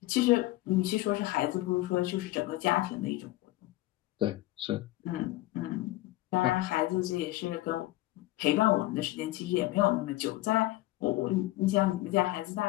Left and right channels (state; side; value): quieter; right; 17.9 dB